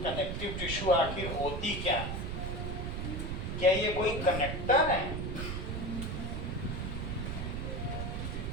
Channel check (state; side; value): noise; right; rumble, 3 dB below the sound